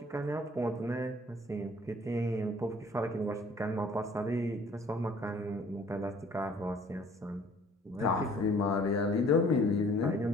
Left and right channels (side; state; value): both; normal; correlation 0.55